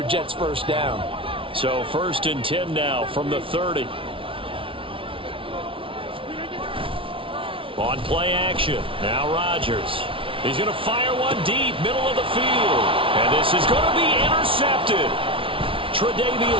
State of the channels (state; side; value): late; left; 0.25 ms